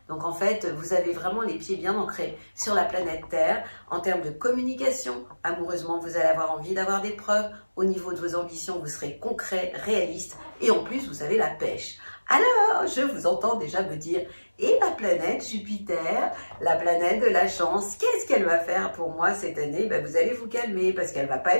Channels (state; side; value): inverted; both; correlation -1.00